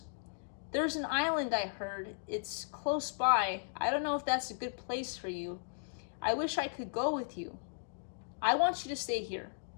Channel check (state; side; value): silent; right; digital silence